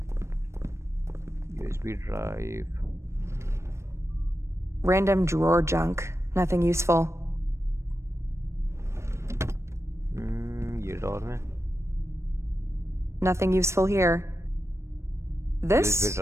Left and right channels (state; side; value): late; left; 0.13 ms